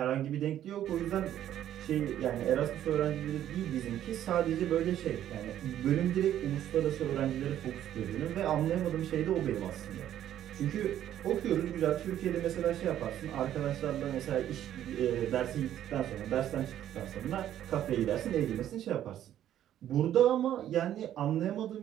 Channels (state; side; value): quieter; left; 11.5 dB